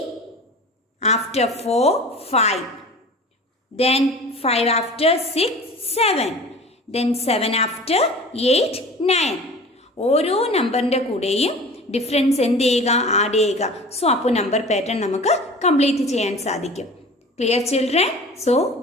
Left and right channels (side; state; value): both; normal; correlation 0.40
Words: after 4, 5. Then 5 after 6, 7. Then 7 after 8, 9. ഓരോ നമ്പറിൻ്റെ കൂടെയും ഡിഫറൻസ് എന്ത് ചെയ്യുക, ആഡ് ചെയ്യുക. സോ അപ്പോൾ നമ്പർ പാറ്റേൺ നമുക്ക് കംപ്ലീറ്റ് ചെയ്യാൻ സാധിക്കും. Clear children? So